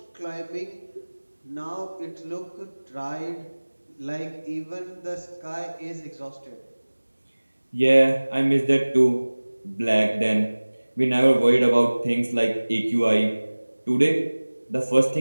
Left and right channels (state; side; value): inverted; both; correlation -1.00